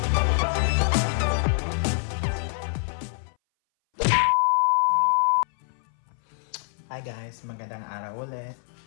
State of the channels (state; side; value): silent; right; 60 dB below the other